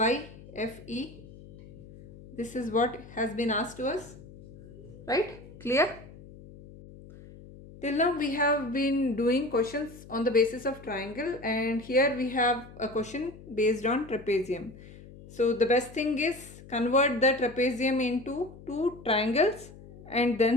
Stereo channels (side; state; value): left; noise; hum, 18 dB below the sound